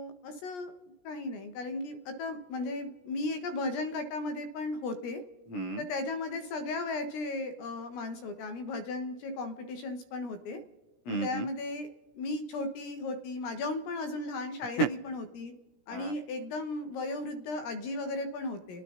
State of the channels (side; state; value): right; late; 17 ms